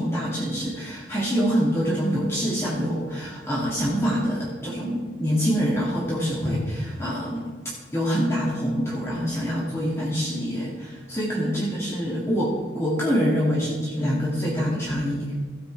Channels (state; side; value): normal; both; correlation 0.77